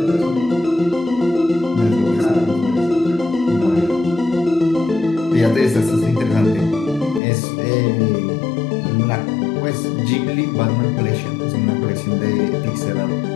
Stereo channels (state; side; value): drops out; right; at 7.2 s